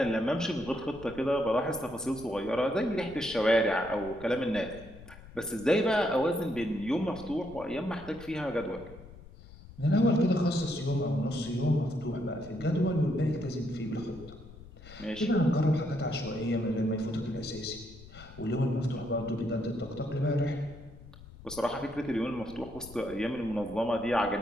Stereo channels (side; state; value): left; noise; rumble, 18 dB below the sound